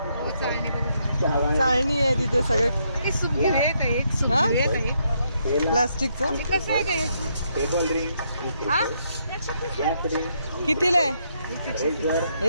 चाळणी आहे तिथे सगळे. प्लास्टिकचं कसं आहे काय? कितीला आहे?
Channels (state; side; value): inverted; both; correlation -0.76